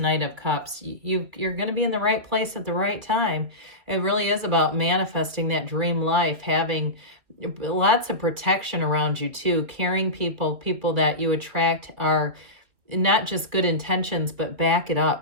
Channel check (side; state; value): left; late; 2.6 ms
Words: of Cups, you're going to be in the right place at the right time. It really is about manifesting that dream life, having lots of protection around you too, caring people that you attract are not just good intentions, but back it